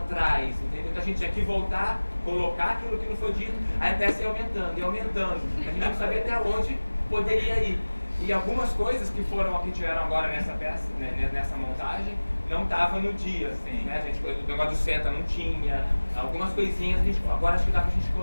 entendeu? Então a gente tinha que voltar, colocar aquilo que não foi dito, aí a peça ia aumentando, e aumentando. A gente não sabia até onde poderia ir. E algumas coisas que tiveram agora nessa peça, né, nessa montagem, não estava no dia, assim, né? A gente, o negócio do senta não tinha, algumas coisinhas agora acho que dá pra gente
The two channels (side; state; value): both; inverted; correlation -1.00